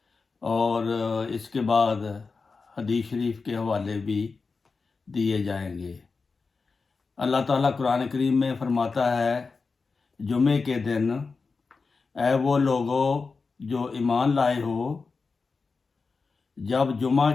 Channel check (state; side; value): quieter; right; 4.5 dB